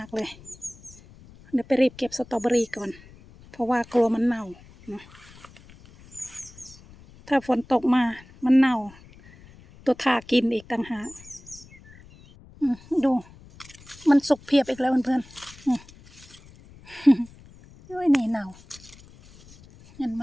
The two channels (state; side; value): noise; left; rumble, 23 dB below the sound